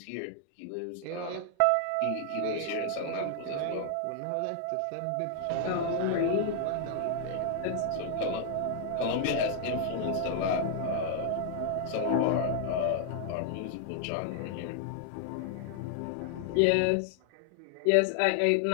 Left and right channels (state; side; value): different; both; correlation 0.00